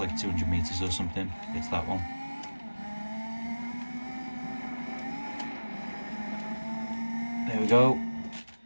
200 meters or something. It's that one. There we go,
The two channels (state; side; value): inverted; both; correlation -1.00